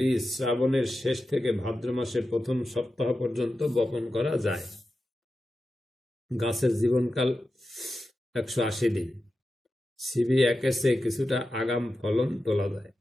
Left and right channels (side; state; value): both; normal; correlation 0.91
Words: শ্রাবণের শেষ থেকে ভাদ্র মাসের প্রথম সপ্তাহ পর্যন্ত বপন করা যায়। গাছের জীবনকাল 180 দিন। CB1 এর চেয়ে কিছুটা আগাম ফলন তোলা যায়।